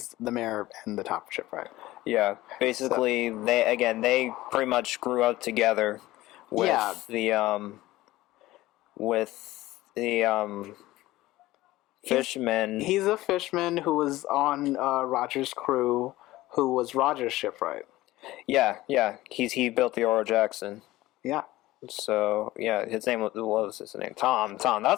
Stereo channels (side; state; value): right; quieter; 17.3 dB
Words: the mayor and the top shipwright. Yeah, basically they pretty much grew up together with the Fishman. He's a fishman who was on Roger's crew, who was Roger's shipwright. Yeah. He built the Oro Jackson. Yeah. So yeah, his name what was his name? Tom.